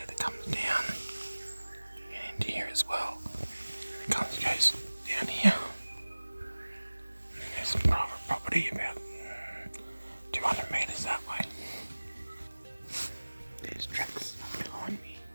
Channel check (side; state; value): both; inverted; correlation -1.00